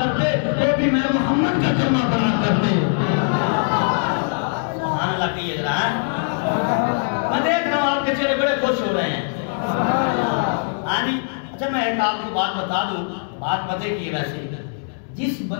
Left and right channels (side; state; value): right; silent; 65 dB below the other